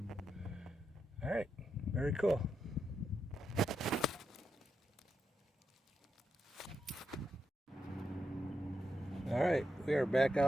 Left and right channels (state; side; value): normal; both; correlation 0.84